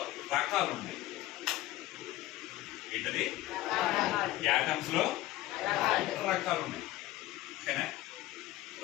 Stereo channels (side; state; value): right; quieter; 16.1 dB